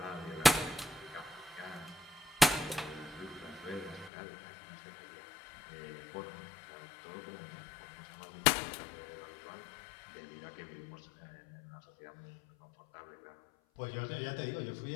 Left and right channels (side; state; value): right; drops out; at 4.1 s